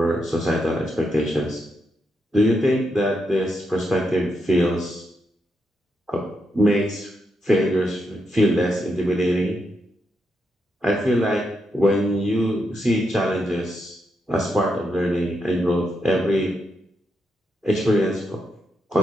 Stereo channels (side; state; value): both; normal; correlation 0.82